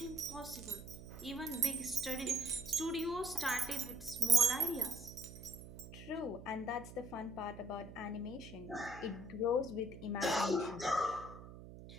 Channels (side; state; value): right; noise; hum, 15 dB below the sound